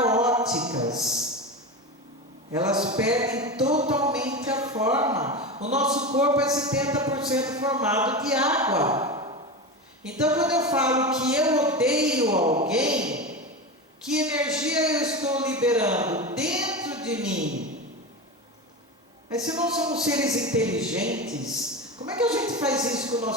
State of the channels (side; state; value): both; normal; correlation 0.23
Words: Elas perdem totalmente a forma. O nosso corpo é 70% formado de água. Então, quando eu falo que eu odeio alguém, que energia eu estou liberando dentro de mim? Mas se não somos seres inteligentes, como é que a gente faz isso com o